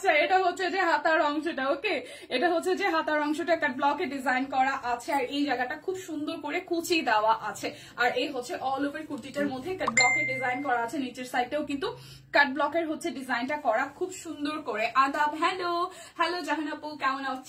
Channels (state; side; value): identical; both; correlation 1.00